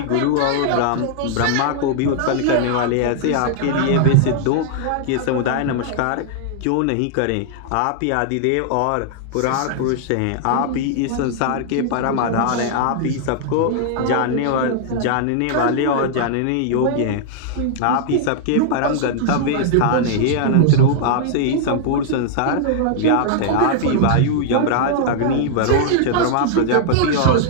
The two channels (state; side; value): different; both; correlation -0.01